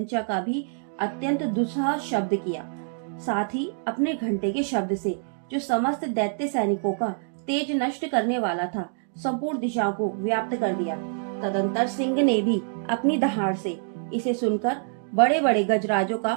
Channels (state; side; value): silent; left; digital silence